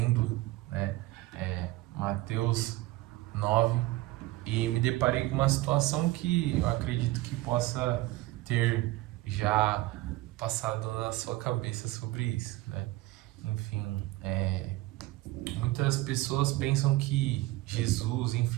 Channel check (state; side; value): quieter; left; 18.1 dB